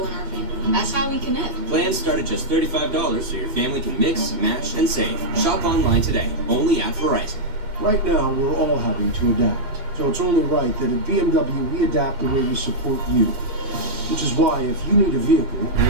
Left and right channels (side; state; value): left; late; 2.8 ms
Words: in our family. That's how we connect. Plans start at just $35 so your family can mix, match, and save. Shop online today, only at Verizon. Right now, we're all having to adapt. So it's only right that at BMW, we adapt the way we support you. Which is why, if you need a vehicle,